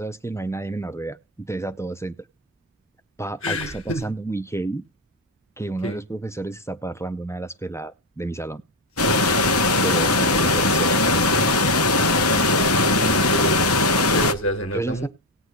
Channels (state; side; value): normal; both; correlation 0.09